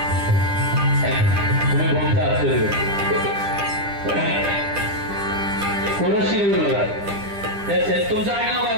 तुम्ही बोलता असतो कोणशी बघा. तुमचं आडनाव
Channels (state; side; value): late; left; 10 ms